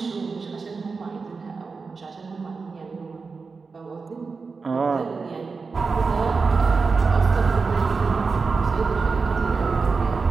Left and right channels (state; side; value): quieter; left; 4.6 dB